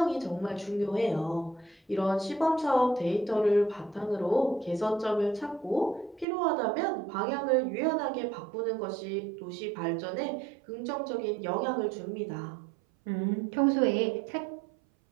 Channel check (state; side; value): drops out; left; at 6.2 s